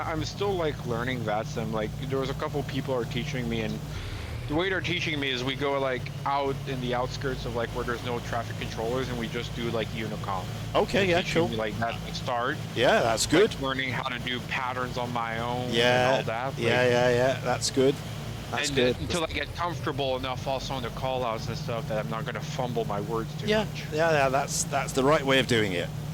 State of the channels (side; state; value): both; identical; correlation 1.00